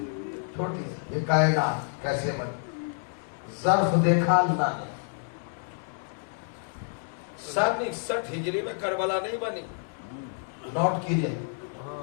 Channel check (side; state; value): right; silent; 58 dB below the other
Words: چھوٹی سی، یہ کائنات کیسے بنی؟ ظرف دیکھا اللہ نے۔ 61 ہجری میں کربلا نہیں بنی، نوٹ کیجئے،